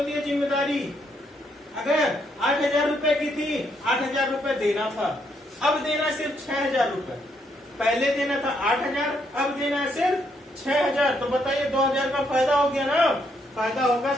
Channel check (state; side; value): normal; both; correlation 0.75